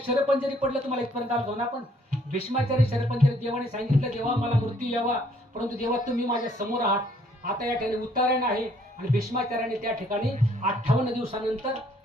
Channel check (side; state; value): both; normal; correlation 0.64